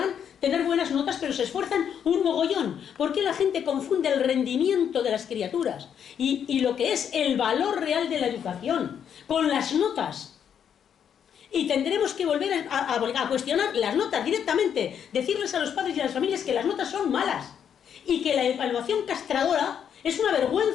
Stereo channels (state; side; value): quieter; right; 8.4 dB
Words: tener buenas notas, pero se esfuerzan un mogollón? ¿Por qué la gente confunde el rendimiento de las criaturas y lo que es el valor real de la educación con las notas? Y tendremos que volver a cuestionar las notas directamente, decirles a los padres y a las familias que las notas son malas y que la evaluación castradora Es una